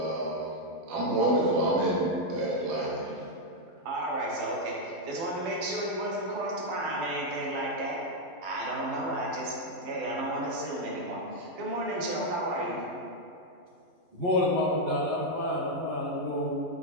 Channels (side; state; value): left; late; 12 ms